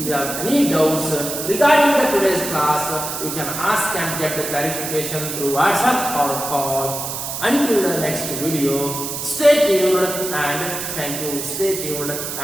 have any doubts regarding the today's class, you can ask and get the clarification through WhatsApp or call. Until the next video, stay tuned and thank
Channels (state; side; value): noise; right; hiss, 5 dB below the sound